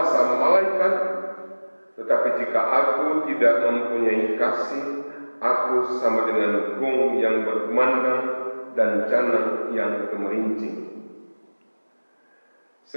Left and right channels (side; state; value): both; inverted; correlation -1.00